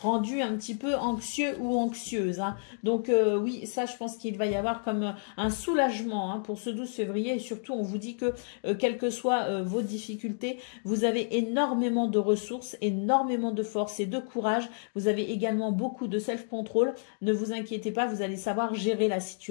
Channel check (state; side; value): silent; right; digital silence